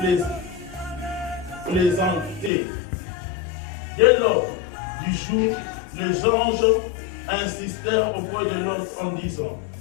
plaisanter. Dès lors du jour, les anges insistèrent auprès de l'autre en disant,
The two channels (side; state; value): right; drops out; at 2.5 s